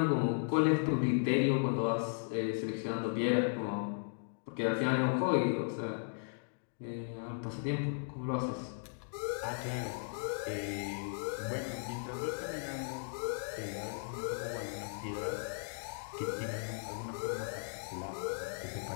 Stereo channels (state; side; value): silent; right; digital silence